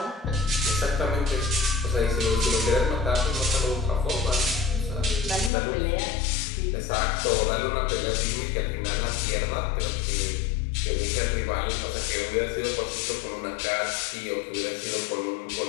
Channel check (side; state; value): right; drops out; at 5.5 s